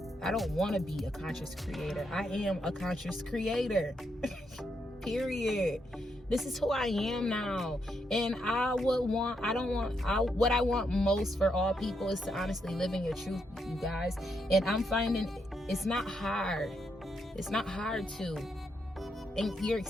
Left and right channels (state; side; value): normal; both; correlation 0.80